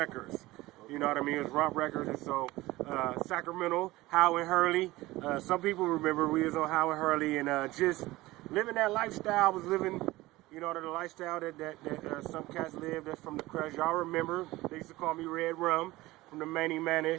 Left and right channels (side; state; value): left; quieter; 18.9 dB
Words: You know what I mean? It was Romp Records, and so Sacramento, Howard Hurley. Some people remember we was on Howard Hurley, and just living that lifestyle. I was living, you know, the lifestyle that some cats live. That's from the crush. Y'all remember? They used to call me Red Rum from the Manny